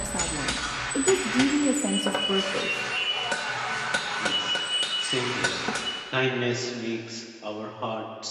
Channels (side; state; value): both; identical; correlation 1.00